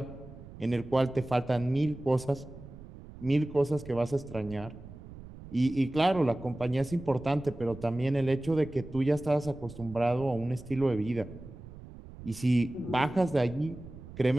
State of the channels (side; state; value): right; noise; rumble, 16 dB below the sound